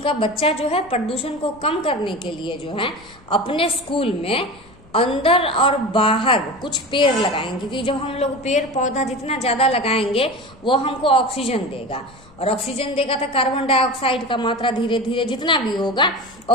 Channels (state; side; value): noise; left; rumble, 26 dB below the sound